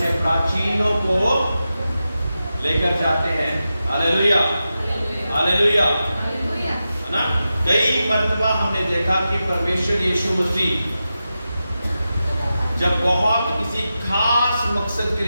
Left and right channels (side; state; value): both; inverted; correlation -0.91